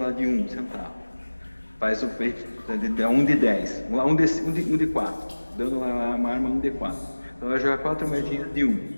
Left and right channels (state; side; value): inverted; both; correlation -1.00